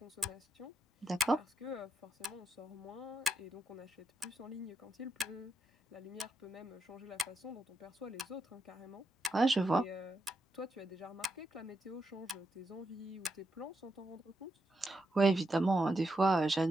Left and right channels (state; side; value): normal; both; correlation 0.81